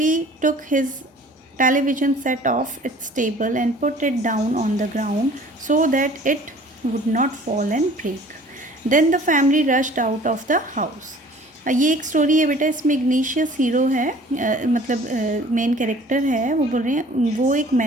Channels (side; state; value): both; normal; correlation 0.50